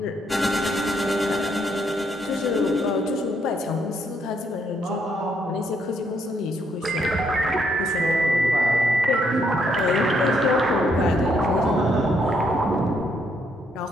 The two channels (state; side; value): normal; both; correlation 0.73